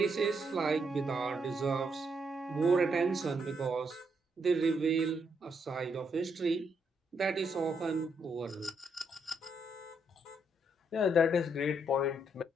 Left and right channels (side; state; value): both; normal; correlation 0.76